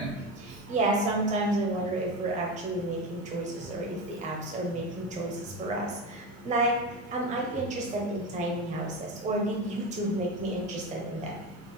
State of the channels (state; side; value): normal; both; correlation 0.21